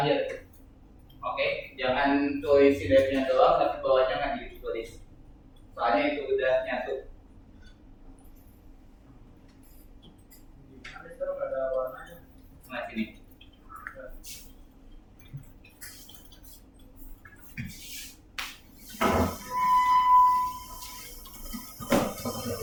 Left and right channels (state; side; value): identical; both; correlation 1.00